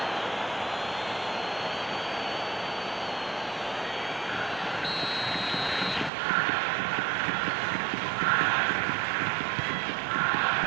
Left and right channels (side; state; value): left; drops out; at 6.1 s